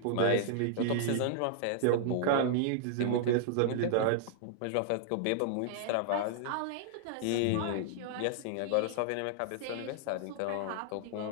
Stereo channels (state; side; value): different; both; correlation -0.01